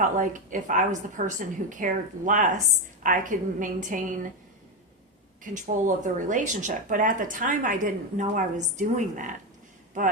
like if I was the person who cared less, I could maintain control of the relationship. But at the time, I didn't know I was doing that.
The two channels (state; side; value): normal; both; correlation 0.11